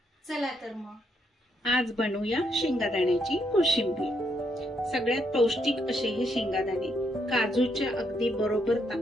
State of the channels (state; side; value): normal; both; correlation 0.76